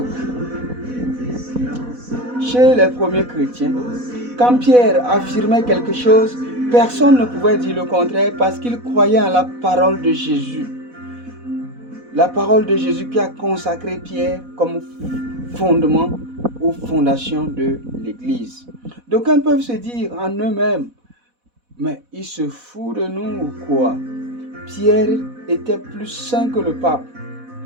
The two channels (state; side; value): late; left; 4.1 ms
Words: Chez les premiers chrétiens, quand Pierre affirmait quelque chose, personne ne pouvait dire le contraire parce qu'il croyait en la parole de Jésus. La parole de Jésus qui a consacré Pierre comme fondement aux fondations de l'Église. D'aucuns peuvent se dire en eux-mêmes, mais il se fout de nous ou quoi? Pierre était plus saint que le pape,